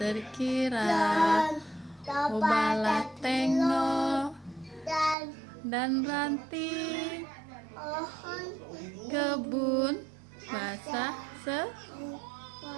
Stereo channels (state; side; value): drops out; left; at 5.2 s